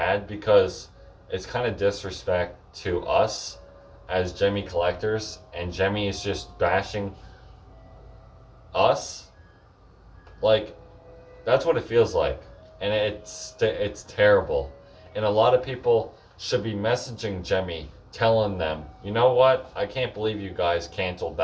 because it's kind of disrespect to us as Gemmy collectors, and Gemmy is just bashing us. Like, that's what it feels like, and it's terrible. And a lot of people should be messaging Gemmy, telling them, you know what? I can't believe you guys canceled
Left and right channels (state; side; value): identical; both; correlation 1.00